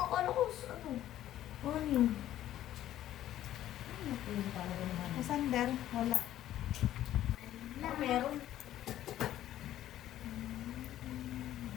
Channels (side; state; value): right; quieter; 12.8 dB